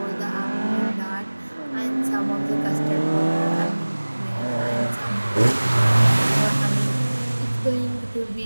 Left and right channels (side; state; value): both; inverted; correlation -1.00